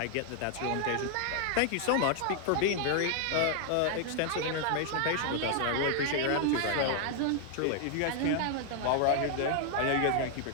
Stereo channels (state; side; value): different; both; correlation 0.00